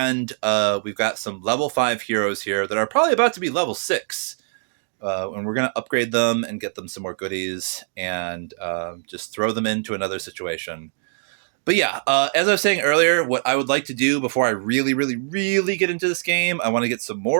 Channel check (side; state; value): left; silent; digital silence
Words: we've got some level 5 heroes here that are probably about to be level 6. And we're going to upgrade them and get them some more goodies and just throw them into another situation. But yeah, as I was saying earlier, what I would like to do before I really, really, really get into this game, I want to get some